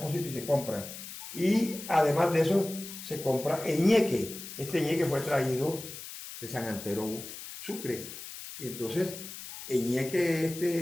y se compran. Y además de eso, se compra ñeque. Este ñeque fue traído de San Antero, Sucre. Y entonces, el ñeque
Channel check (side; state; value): left; noise; hiss, 11 dB below the sound